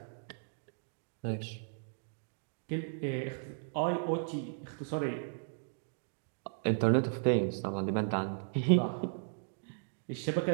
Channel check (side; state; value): left; silent; digital silence